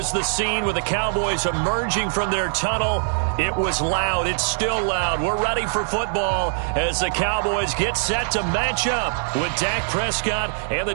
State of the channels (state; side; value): silent; left; digital silence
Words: the scene with the Cowboys emerging from their tunnel. It was loud. It's still loud. We're ready for football as the Cowboys get set to match up with Dak Prescott and the